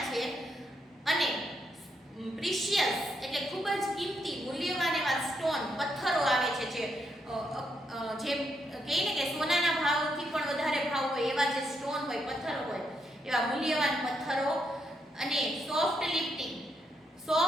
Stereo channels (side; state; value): both; normal; correlation 0.79